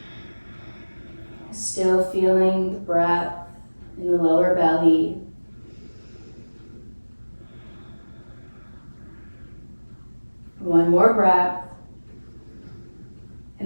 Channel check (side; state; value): both; inverted; correlation -1.00